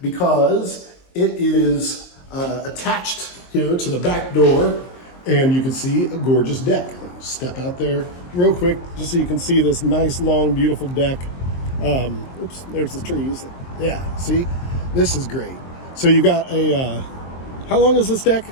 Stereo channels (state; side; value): late; right; 23 ms